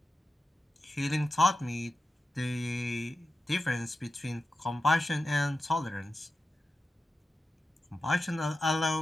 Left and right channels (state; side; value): normal; both; correlation 0.92